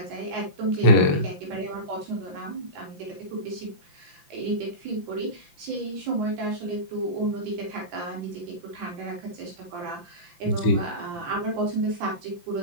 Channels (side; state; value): left; late; 5.8 ms